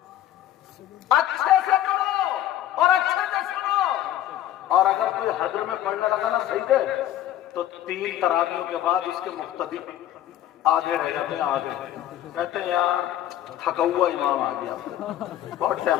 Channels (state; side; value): quieter; right; 12.5 dB